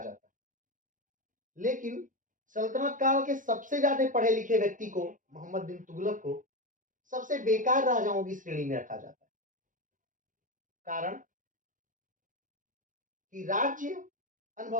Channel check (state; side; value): late; left; 0.38 ms